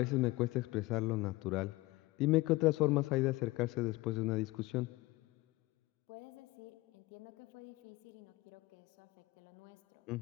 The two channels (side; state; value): right; quieter; 20.6 dB